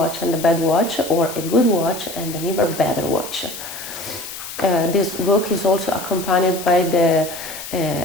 and a bad watch, or a good watch and an even better watch. This book is also accompanied by the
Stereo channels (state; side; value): noise; left; hiss, 11 dB below the sound